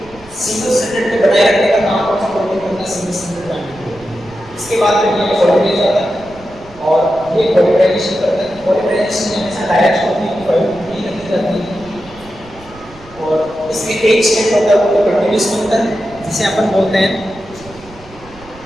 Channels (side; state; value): right; noise; rumble, 22 dB below the sound